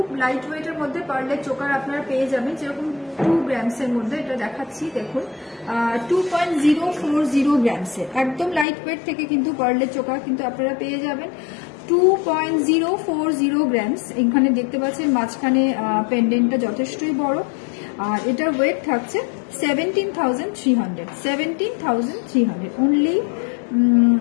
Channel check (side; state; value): right; drops out; at 8.7 s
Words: লাইট ওয়েটের মধ্যে পার্লের চোকার আপনারা পেয়ে যাবেন, যেরকম 2 গ্রামসের মধ্যে। এটা দেখাচ্ছি, দেখুন, 2.040 গ্রামসের একদম লাইট ওয়েট থেকে কিন্তু পার্লের চোকার কিন্তু আপনারা পেয়ে যাবেন 2.040 গ্রামস। এখানে দেখতে পাচ্ছেন মাঝখানে পেন্ডেন্টটা যথেষ্টই বড়, আর এটার ওয়েট থাকছে 17,300, 17,300, অনলি